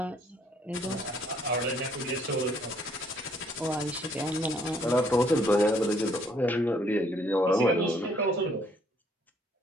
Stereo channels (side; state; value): both; normal; correlation 0.65